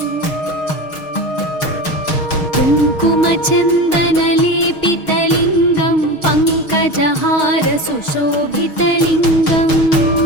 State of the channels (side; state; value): right; late; 6.4 ms